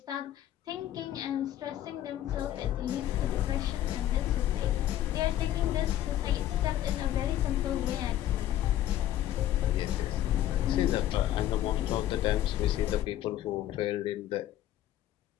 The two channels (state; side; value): quieter; right; 12.7 dB